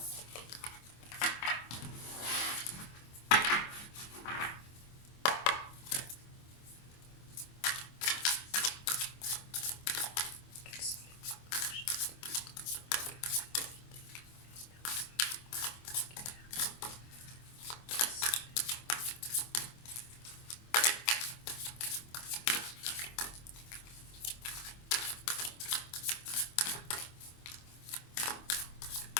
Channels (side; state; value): right; late; 25 ms